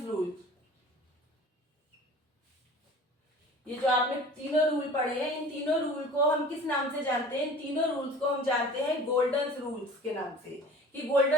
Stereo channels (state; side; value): normal; both; correlation 0.43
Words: रूल्स, ये जो आपने तीनों रूल पढ़े हैं इन तीनों रूल को हम किस नाम से जानते हैं, इन तीनों रूल्स को हम जानते हैं गोल्डन रूल्स के नाम से। कि